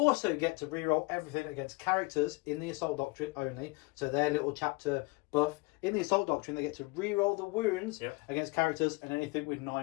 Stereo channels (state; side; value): quieter; right; 25.3 dB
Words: get to reroll everything against characters in the Assault Doctrine only, so their little chapter buff. In the Assault Doctrine they get to reroll the wounds against characters and anything with